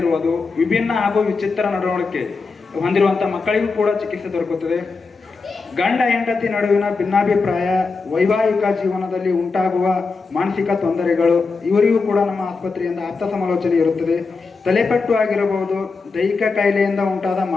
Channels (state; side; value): quieter; right; 4.4 dB